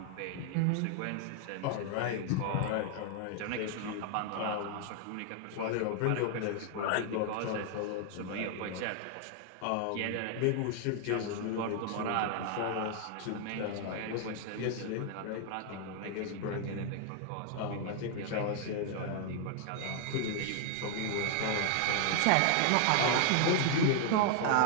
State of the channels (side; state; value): both; different; correlation 0.00